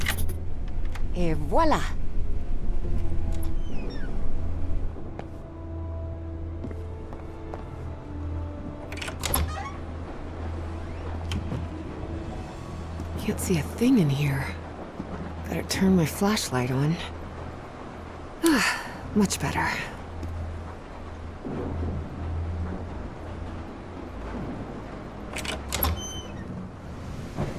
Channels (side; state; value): both; identical; correlation 1.00